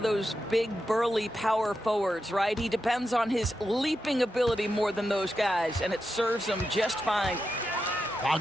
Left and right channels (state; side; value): normal; both; correlation 0.88